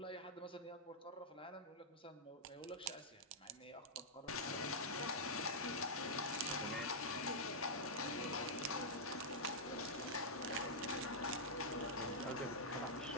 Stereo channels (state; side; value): normal; both; correlation -0.08